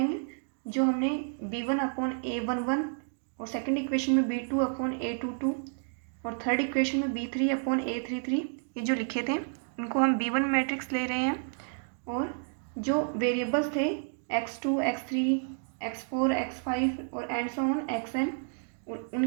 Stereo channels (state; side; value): silent; left; 58 dB below the other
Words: जो हमने b1 अपॉन a11 और सेकंड इक्वेशन में b2 अपॉन a22 और थर्ड इक्वेशन में b3 अपॉन a33 ये जो लिखे थे इनको हम b1 मैट्रिक्स ले रहे हैं। और जो वेरिएबल्स थे x2, x3, x4, x5 और एंड सो ऑन xn,